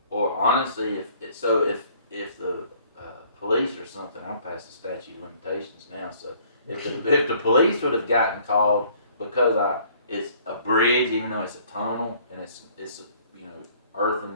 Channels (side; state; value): both; inverted; correlation -0.58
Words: honestly, if the police or something, I'm past the statute of limitations now. So if the police would have gotten called because it's a bridge, even though it's a tunnel and it's earthen